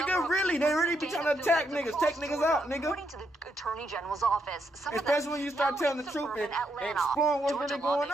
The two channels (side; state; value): both; normal; correlation 0.79